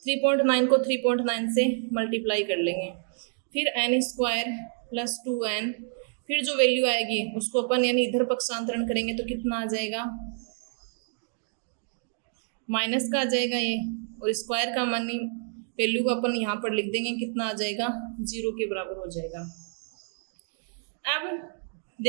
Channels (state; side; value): silent; left; 59 dB below the other